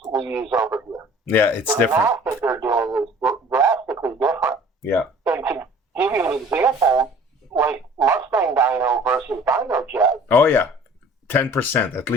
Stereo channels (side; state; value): both; normal; correlation 0.49